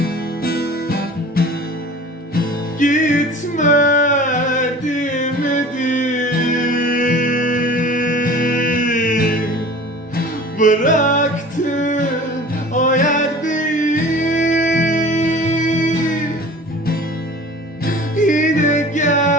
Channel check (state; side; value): normal; both; correlation 0.42